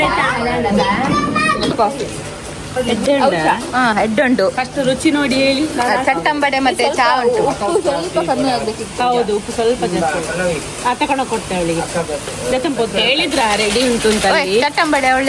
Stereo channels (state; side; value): identical; both; correlation 1.00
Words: ಹೆಡ್ ಉಂಟು, ಫಸ್ಟ್ ರುಚಿ ನೋಡಿ ಹೇಳಿ. ಚಟ್ಟಂಬಡೆ ಮತ್ತೆ ಚಾ ಉಂಟು. ಸ್ವಲ್ಪ ಕಮ್ಮಿ ಆಗ್ಬೇಕಿತ್ತು. ಹೌದು, ಉಪ್ಪು ಸ್ವಲ್ಪ ಜಾಸ್ತಿ. ತಗೊಂಡೋಗಿ ಕೊಡ್ತೆ ಅವಳಿಗೆ. ಹೇಳಿದ್ರ ರೆಡಿ ಉಂಟು ಅಂತ. ಚಟ್ಟಂಬಡೆ